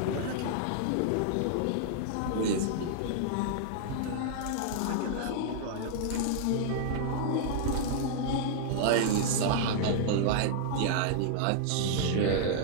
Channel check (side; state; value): both; different; correlation -0.01